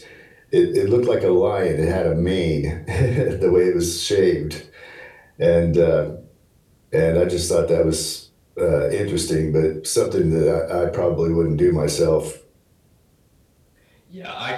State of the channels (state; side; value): identical; both; correlation 1.00